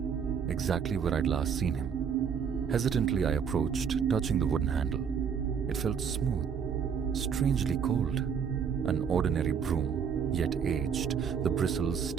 exactly where I'd last seen him. Hesitantly I approached, touching the wooden handle. It felt smooth, strangely cold. An ordinary broom, yet aged, the bristles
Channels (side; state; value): left; quieter; 7.1 dB